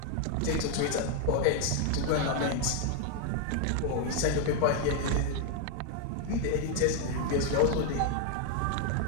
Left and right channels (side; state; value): both; different; correlation 0.00